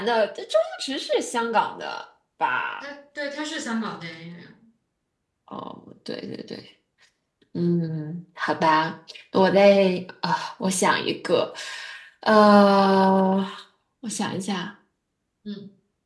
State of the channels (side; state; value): both; identical; correlation 1.00